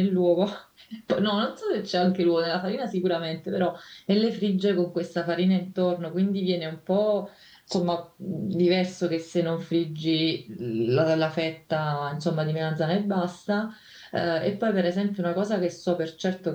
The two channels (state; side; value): identical; both; correlation 1.00